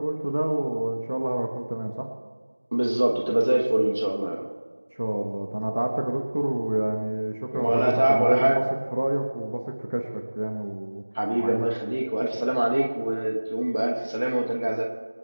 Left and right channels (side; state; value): both; inverted; correlation -1.00